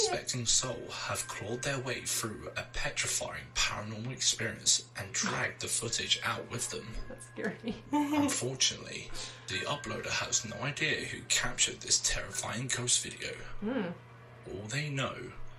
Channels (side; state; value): both; identical; correlation 1.00